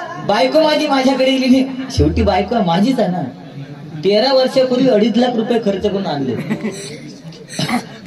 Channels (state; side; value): identical; both; correlation 1.00